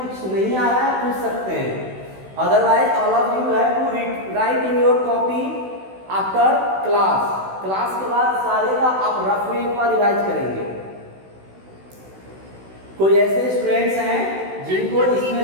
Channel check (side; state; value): left; late; 16 ms